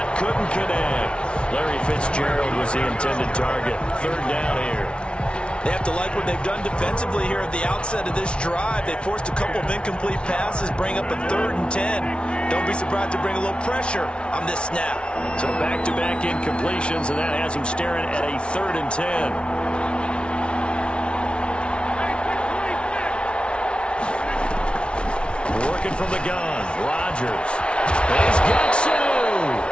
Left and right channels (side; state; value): right; late; 0.058 ms